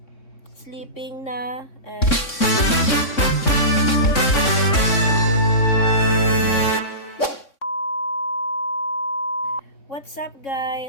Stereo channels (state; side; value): late; right; 3.6 ms